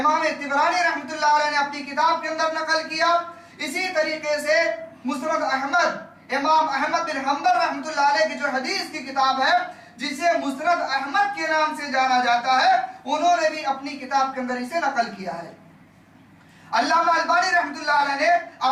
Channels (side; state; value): both; identical; correlation 1.00